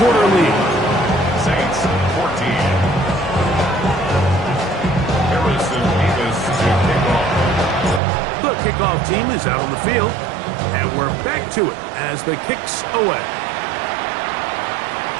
quarter lead. Saints 14. Harrison Davis to kick off. The kickoff team is out on the field, and we're back to it as the kicks away.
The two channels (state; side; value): drops out; left; at 8.0 s